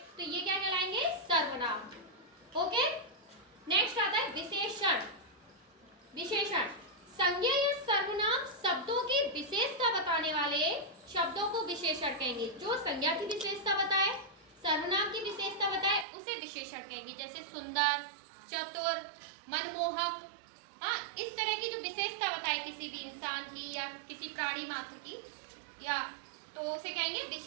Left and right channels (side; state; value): left; drops out; at 16.1 s